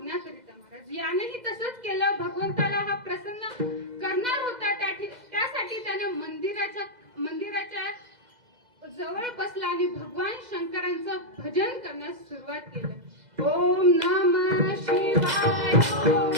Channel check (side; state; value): left; late; 2.0 ms